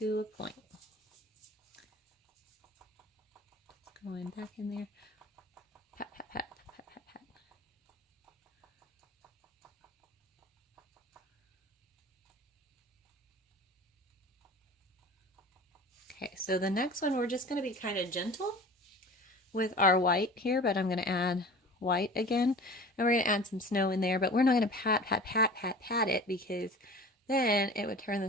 a point. Just going back in there. Pat, pat, pat, pat, pat, pat. Okay, so the next one we're just going to be kind of gentle with our white here, but I'm going to add white again, and we're going to add some snow in there, but we're not going to pat, pat, pat, pat, pat it because then it would turn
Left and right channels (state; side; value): normal; both; correlation 0.40